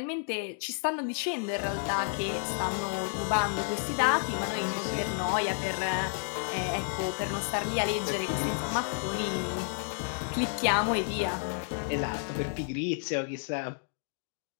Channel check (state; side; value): silent; right; digital silence